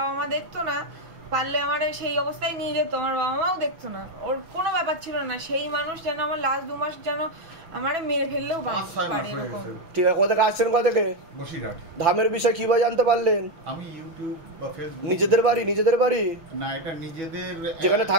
মা দেখতো না, পারলে আমার সেই অবস্থায় নিয়ে যেত, আমার বাবা মাও দেখতো না, ওর কোনো ব্যাপার ছিল না। সেই মানুষ যেন আমার লাস্ট 2 মাস যেন আমারে মেরে ফেললেও পারে। ঠিক আছে, কোথা থেকে আসছেন? কোথা থেকে? বসিরহাট। ধামের বিষয় কিভাবে জানতে পারলেন? আমি ইউটিউব বা ফেসবুক। নিজেদের বাড়ি? নিজেদের বাড়ি না, এটা নিজেদের, যেখানে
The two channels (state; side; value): late; left; 6.3 ms